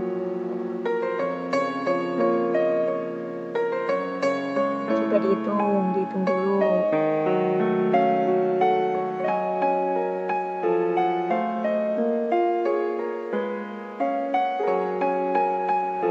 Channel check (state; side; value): identical; both; correlation 1.00